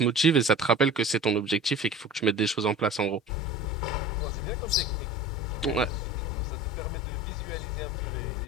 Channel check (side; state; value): both; normal; correlation 0.40